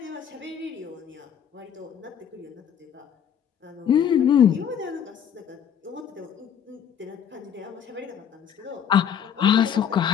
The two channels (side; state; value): right; quieter; 8.5 dB